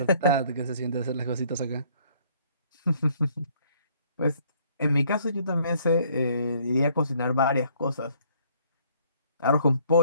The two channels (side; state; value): both; inverted; correlation -0.62